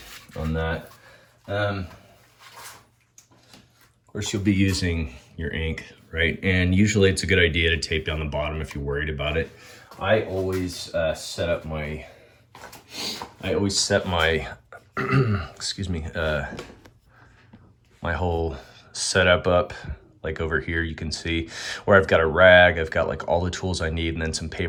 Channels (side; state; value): both; identical; correlation 1.00